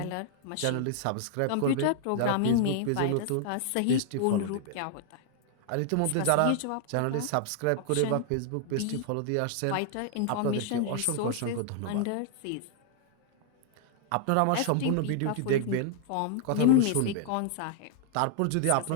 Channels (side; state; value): both; different; correlation 0.00